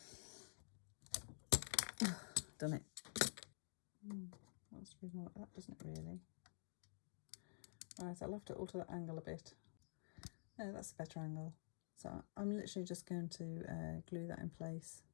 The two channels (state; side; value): silent; right; digital silence